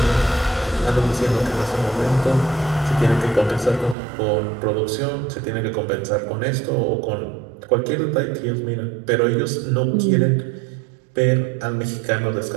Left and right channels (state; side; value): drops out; left; at 4.0 s